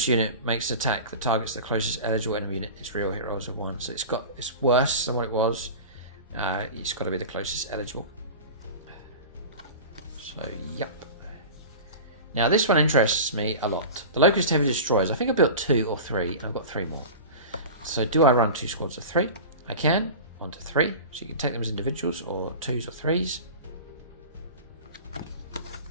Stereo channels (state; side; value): inverted; both; correlation -0.32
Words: unit makes an attack that targets the closest eligible enemy unit, its real hit rolls of 1. So it's worse than what it was. It's got to be the closest eligible. So yep. Now this one interests me a lot. The Locust Heavy Destroyers. I think I built 2 or 3, and I've got 3 more. So do I run 2 squads of 3? I can. 1 to 3. So you can take them as individuals or 2s or 3s.